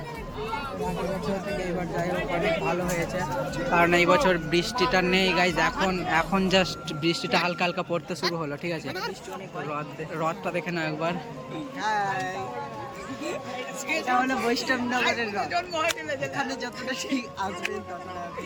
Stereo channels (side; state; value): both; identical; correlation 1.00